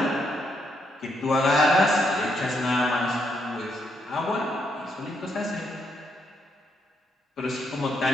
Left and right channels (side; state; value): both; normal; correlation 0.76